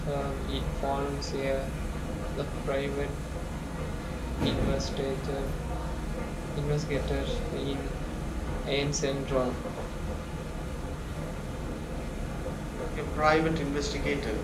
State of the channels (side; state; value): both; identical; correlation 1.00